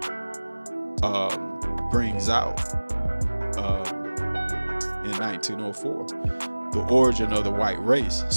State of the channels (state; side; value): inverted; both; correlation -1.00